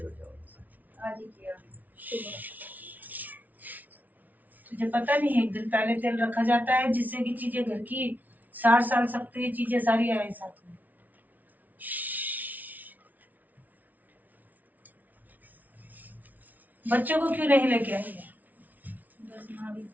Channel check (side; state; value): left; late; 0.078 ms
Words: हो जाओ। आज ही किया सुबह। तुझे पता नहीं है एक दिन पहले तेल रखा जाता है जिससे कि चीजें घर की 60 साल सकती है, चीजें सारी आए साथ में। बच्चों को क्यों नहीं लेके आई है? बस माँ भी